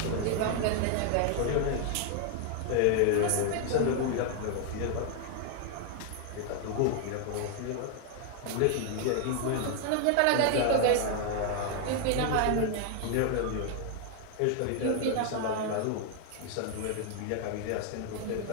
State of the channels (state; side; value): different; both; correlation 0.00